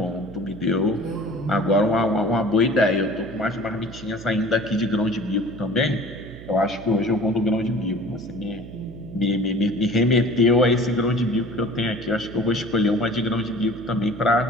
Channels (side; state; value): right; noise; hum, 15 dB below the sound